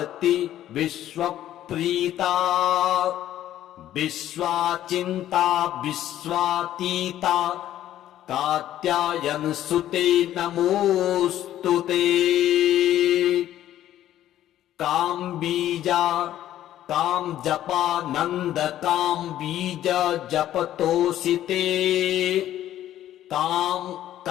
विश्वप्रीता विश्वाचिन्ता विश्वातीता कात्यायनसुते नमोऽस्तु ते काम्बीजा कामजपा नन्द काम्बीज जपतोषिते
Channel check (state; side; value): quieter; right; 12.5 dB